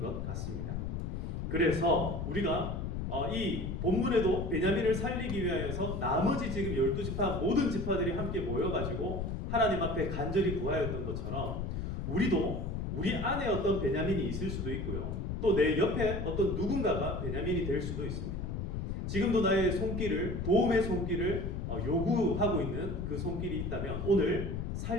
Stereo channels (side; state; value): left; noise; rumble, 3 dB below the sound